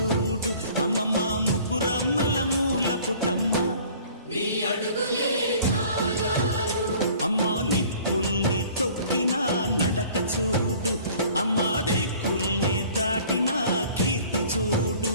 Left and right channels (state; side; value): inverted; both; correlation -0.51